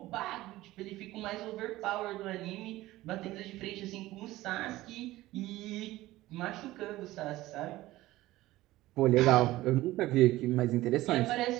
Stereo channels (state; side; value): quieter; left; 17.1 dB